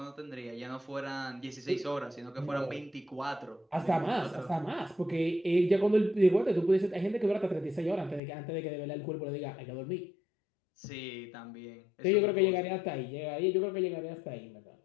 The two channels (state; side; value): drops out; right; at 8.2 s